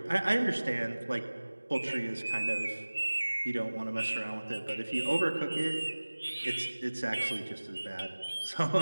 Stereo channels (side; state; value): both; inverted; correlation -1.00